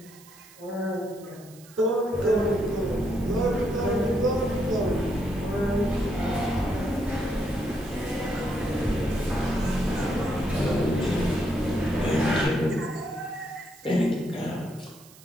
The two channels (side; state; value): right; noise; hiss, 23 dB below the sound